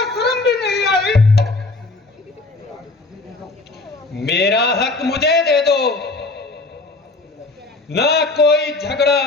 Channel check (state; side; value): quieter; right; 3.3 dB